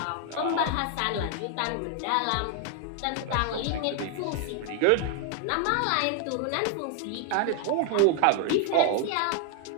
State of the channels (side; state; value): both; different; correlation 0.00